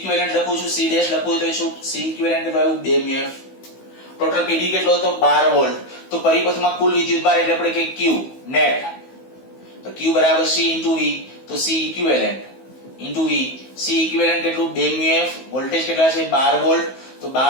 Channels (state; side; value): late; right; 16 ms